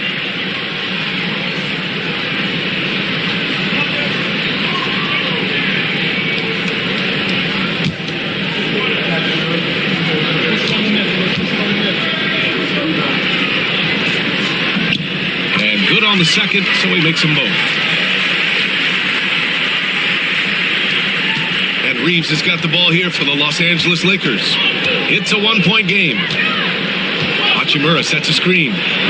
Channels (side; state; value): both; identical; correlation 1.00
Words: And good on the second, so he makes them both. Reeves has got the ball here for the Los Angeles Lakers. It's a 1-point game. Hachimura sets a screen.